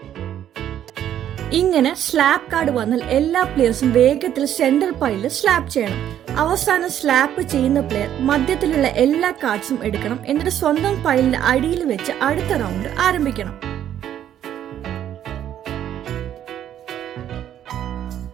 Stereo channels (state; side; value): quieter; left; 10.7 dB